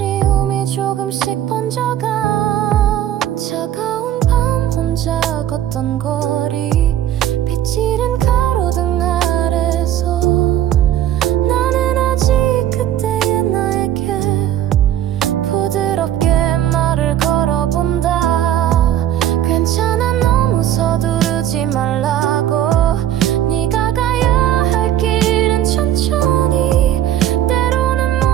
조금씩 번져가. 차가운 밤 혼자 걷던 거리. 빛이른 가로등 아래서 나는 아직 그때의 나에게 부드럽게 말을 걸어본다. 괜찮아 너무 서두르지 말라고. 네가 가야 할 길은 천천히. 때로는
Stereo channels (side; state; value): left; quieter; 11.6 dB